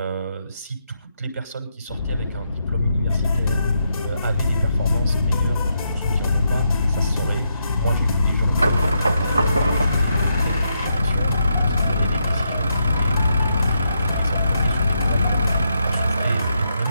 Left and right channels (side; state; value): both; inverted; correlation -0.81